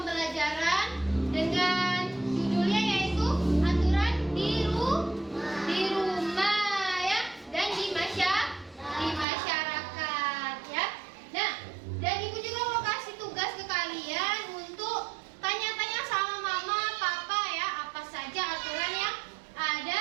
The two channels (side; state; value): left; drops out; at 9.2 s